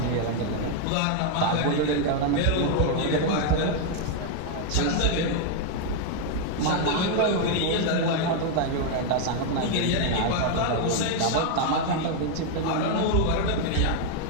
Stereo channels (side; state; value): both; different; correlation 0.00